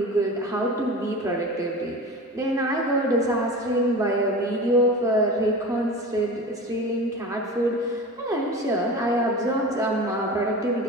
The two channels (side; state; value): both; normal; correlation 0.32